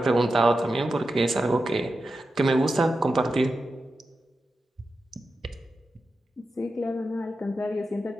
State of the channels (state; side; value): normal; both; correlation 0.90